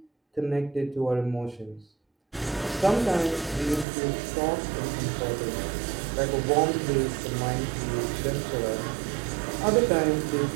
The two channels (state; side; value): drops out; left; at 3.9 s